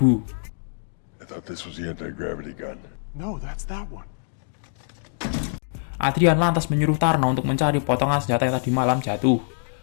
I thought this was the anti-gravity gun. No, that's that one. Adrian lantas menyuruh Tarno untuk mencari potongan senjata yang tadi malam jatuh.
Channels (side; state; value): right; silent; digital silence